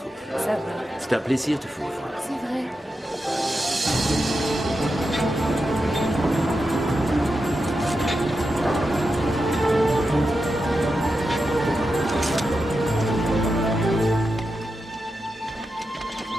Ça va. C'est un plaisir de vous revoir. C'est vrai.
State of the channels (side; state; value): both; normal; correlation 0.89